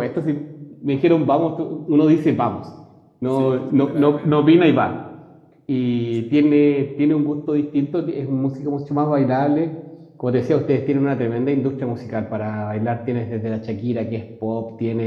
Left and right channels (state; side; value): identical; both; correlation 1.00